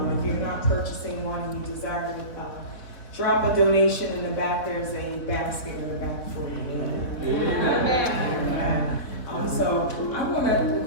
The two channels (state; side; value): late; right; 3.5 ms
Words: If you're not purchasing one and you desire to drop a donation in the back, there's a basket in the back for you. So I want to